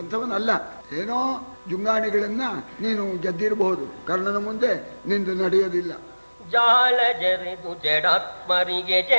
ಏನೋ ಜುಂಗಾಣಿಗಳನ್ನ ನೀನು ಗೆದ್ದಿರಬಹುದು, ಕರ್ಣನ ಮುಂದೆ ನಿಂದು ನಡೆಯೋದಿಲ್ಲ. ಜಾಳ ಜರೆದು ಜಡಾತ್ಮರಿಗೆ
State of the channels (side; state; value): both; inverted; correlation -1.00